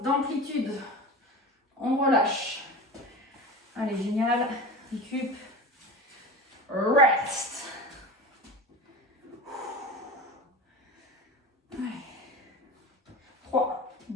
On relâche. Allez, génial. Récup. rest. Allez. 3,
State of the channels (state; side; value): normal; both; correlation 0.31